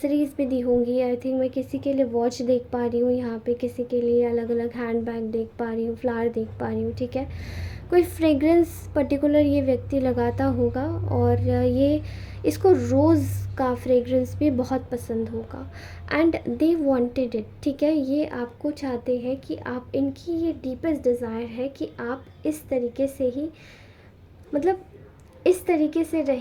भी दी होंगी। आई थिंक मैं किसी के लिए वॉच देख पा रही हूँ यहाँ पे, किसी के लिए अलग अलग हैंड बैग देख पा रही हूँ, फ्लावर देख पा रही हूँ। ठीक है, कोई फ्रेगरेंस पर्टिकुलर ये व्यक्ति लगाता होगा, और ये इसको रोज़ का फ्रेगरेंस भी बहुत पसंद होगा, एंड दे वांटेड इट। ठीक है, ये आपको चाहते हैं कि आप, इनकी ये डीपेस्ट डिज़ायर है कि आप इस तरीके से ही, मतलब इस तरीके से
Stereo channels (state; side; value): identical; both; correlation 1.00